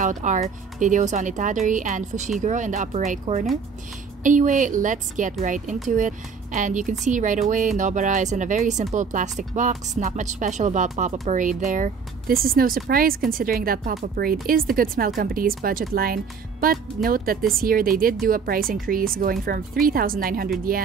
our videos on Itadori and Fushiguro in the upper right corner. Anyway, let's get right into it. And you can see right away, Nobara is in a very simple plastic box. Not much special about pop-up parade there. This is no surprise considering that Pop-Up Parade is the Good Smile Company's budget line, but note that this year they did do a price increase going from 3,900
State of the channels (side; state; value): left; quieter; 5.7 dB